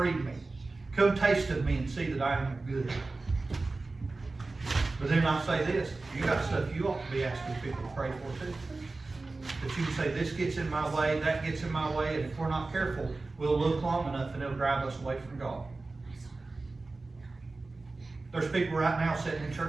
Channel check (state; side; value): quieter; left; 3.4 dB